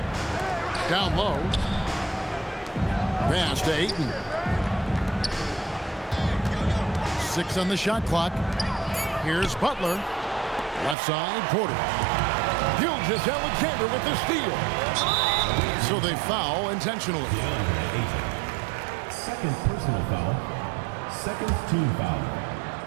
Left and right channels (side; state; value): left; drops out; at 11.0 s